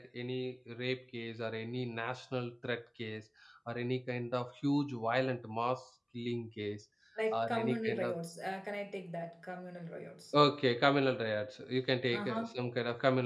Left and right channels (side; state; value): both; identical; correlation 1.00